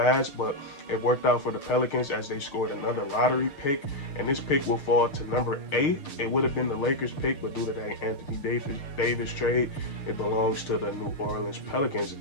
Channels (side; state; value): right; late; 6.7 ms